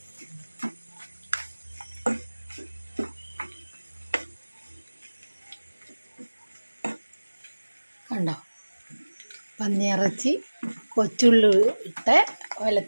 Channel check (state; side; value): inverted; both; correlation -1.00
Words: കണ്ടോ, പന്നിയിറച്ചി കൊച്ചുള്ളി ഇട്ട്